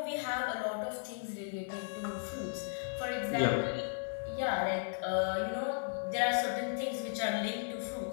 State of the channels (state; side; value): silent; right; 54 dB below the other